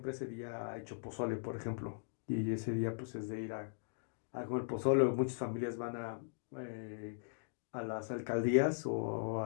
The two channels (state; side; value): silent; right; digital silence